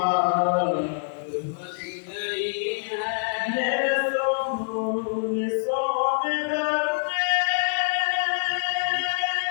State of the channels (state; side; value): silent; right; digital silence